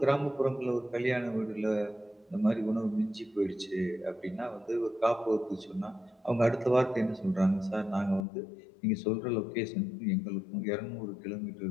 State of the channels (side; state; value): right; drops out; at 8.2 s